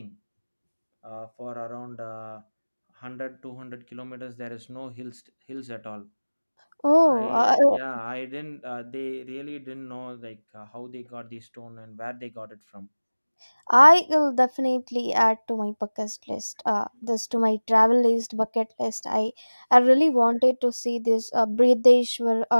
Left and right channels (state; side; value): inverted; both; correlation -1.00